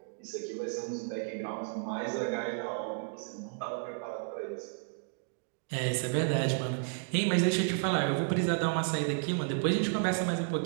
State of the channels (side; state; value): left; silent; digital silence